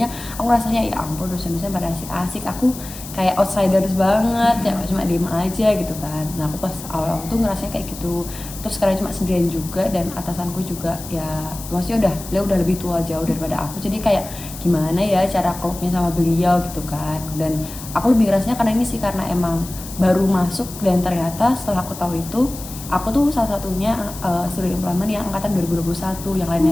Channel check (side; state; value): left; noise; hiss, 13 dB below the sound